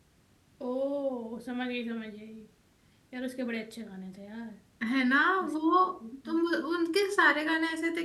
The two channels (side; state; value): both; identical; correlation 1.00